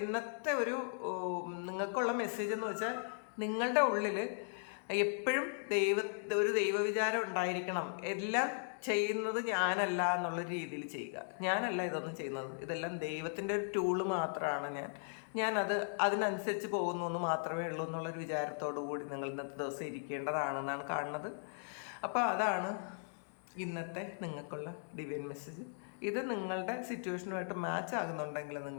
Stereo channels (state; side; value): silent; right; digital silence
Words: ഇന്നത്തെ ഒരു നിങ്ങൾക്കുള്ള മെസ്സേജ് എന്ന് വെച്ചാൽ, നിങ്ങളുടെ ഉള്ളിൽ എപ്പോഴും ഒരു ദൈവവിചാരം ഉണ്ടായിരിക്കണം. എല്ലാം ചെയ്യുന്നത് ഞാനല്ല എന്നുള്ള രീതിയിൽ ചെയ്യുക. ഞാനല്ല ഇതൊന്നും ചെയ്യുന്നത്, ഇതെല്ലാം ദൈവത്തിൻ്റെ ഒരു ടൂള് മാത്രമാണ്. ഞാനത് അതിനനുസരിച്ച് പോകുന്നു എന്ന് മാത്രമേ ഉള്ളൂ എന്നുള്ളൊരു വിചാരത്തോടു കൂടി നിങ്ങൾ ഇന്നത്തെ ദിവസം ഇരിക്കേണ്ടതാണെന്നാണ് കാണുന്നത്. അപ്പോൾ അതാണ് ഇന്നത്തെ നിങ്ങൾക്കുള്ള ഡിവൈൻ മെസ്സേജ്. ഇത് നിങ്ങളുടെ സിറ്റുവേഷനുമായിട്ട് മാച്ച് ആകുന്നുണ്ടെങ്കിൽ